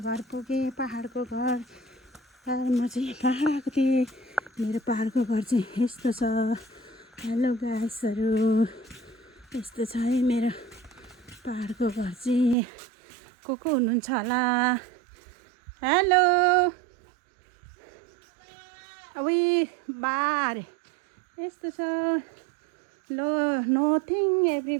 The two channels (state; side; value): drops out; left; at 12.6 s